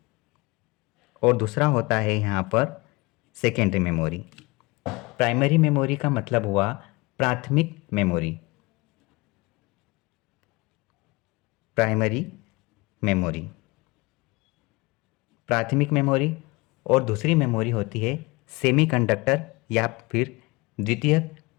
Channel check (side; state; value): right; quieter; 24.0 dB